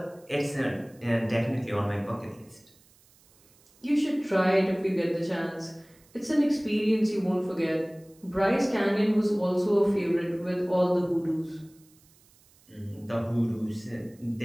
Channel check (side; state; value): right; noise; hiss, 30 dB below the sound